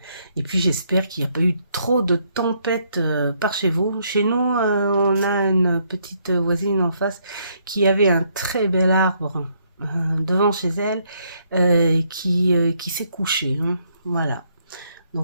Et puis, j'espère qu'il n'y a pas eu trop de tempêtes par chez vous. Chez nous, on a une petite voisine en face qui avait un très bel arbre devant chez elle qui s'est couché. Hein, voilà.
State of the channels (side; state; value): both; inverted; correlation -0.72